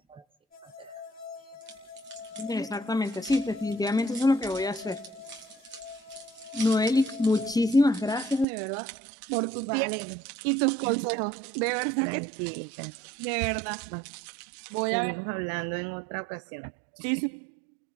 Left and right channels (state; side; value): drops out; left; at 8.5 s